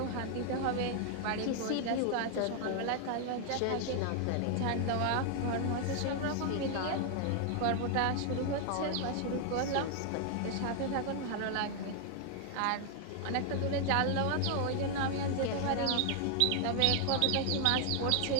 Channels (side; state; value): both; different; correlation 0.00